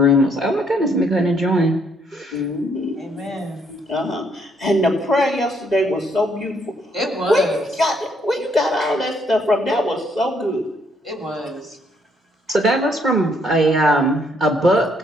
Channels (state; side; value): normal; both; correlation 0.70